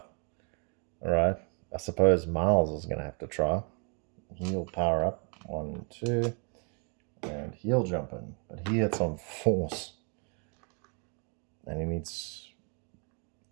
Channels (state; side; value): quieter; left; 37.2 dB